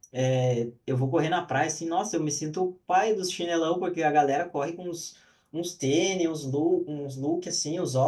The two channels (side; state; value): both; identical; correlation 1.00